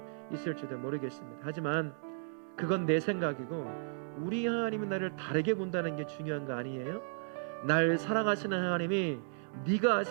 있을지도 모르겠습니다. 하지만 그건 내 생각이고 우리 하나님이 나를 다르게 본다는 게 중요한 거 아니에요? 날 사랑하시는 하나님이 네가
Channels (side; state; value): left; silent; 55 dB below the other